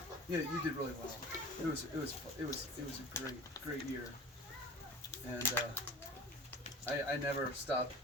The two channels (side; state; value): both; normal; correlation 0.39